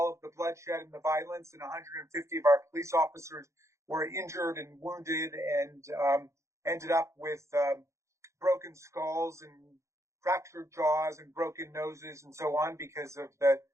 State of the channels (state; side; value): late; left; 0.14 ms